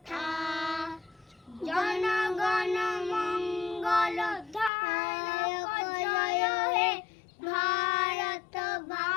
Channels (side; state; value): right; drops out; at 4.7 s